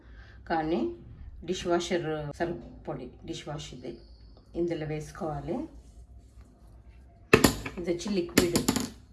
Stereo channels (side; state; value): both; identical; correlation 1.00